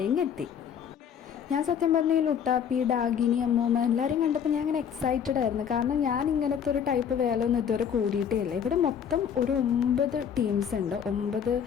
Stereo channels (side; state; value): right; quieter; 8.0 dB